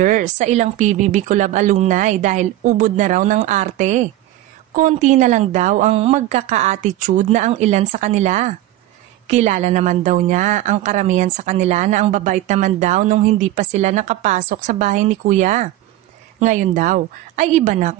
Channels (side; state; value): left; quieter; 14.7 dB